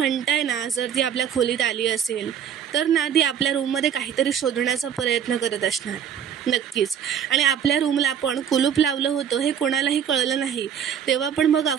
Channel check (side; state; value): left; quieter; 8.7 dB